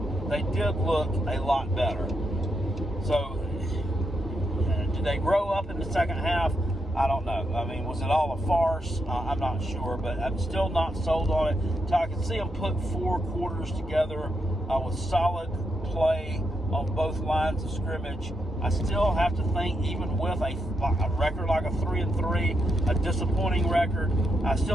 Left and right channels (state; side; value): normal; both; correlation 0.82